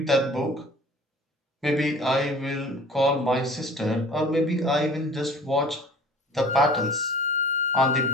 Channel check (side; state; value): both; normal; correlation 0.45